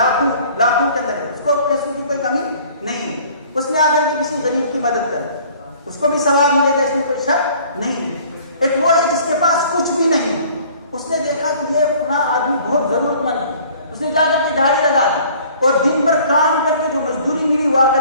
کے اندر ہے، اس کو پیسوں کی کوئی کمی نہیں ہے، اس نے آ کر کے کسی غریب کی مدد کر دی، اس کو بھی ثواب ملے گا، اس میں کوئی شک نہیں ہے۔ ایک وہ ہے جس کے پاس کچھ بھی نہیں، اس نے دیکھا کہ یہ فلاں آدمی بہت ضرورت مند ہے، اس نے جا کر کے دہاڑی لگا دی اور دن بھر کام کر کے جو مزدوری ملی وہ آ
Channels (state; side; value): inverted; both; correlation -0.53